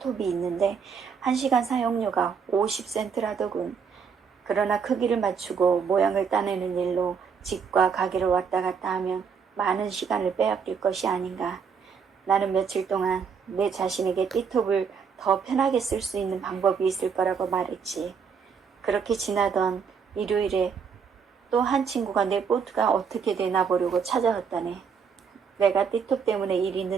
있는데 1시간 사용료가 50센트라더군. 그러나 크기를 맞추고 모양을 따내는 일로 집과 가게를 왔다 갔다 하면 많은 시간을 빼앗길 것이 아닌가. 나는 며칠 동안 내 자신에게 띠톱을 더 편하게 쓸 수 있는 방법이 있을 거라고 말했지. 그렇게 지나던 일요일에 또 한 친구가 내 보트가 어떻게 되나 보려고 찾아왔다네. 내가 띠톱 때문에 일이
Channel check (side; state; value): left; quieter; 6.2 dB